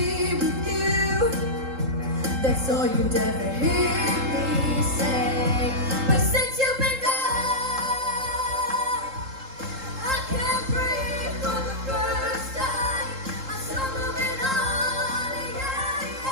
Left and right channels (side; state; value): left; late; 3.8 ms